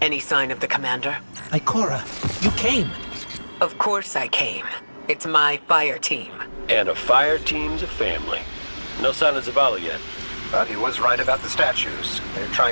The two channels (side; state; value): both; inverted; correlation -1.00